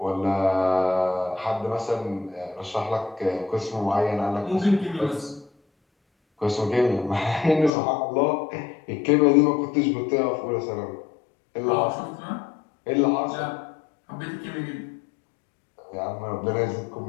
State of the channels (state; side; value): drops out; right; at 7.7 s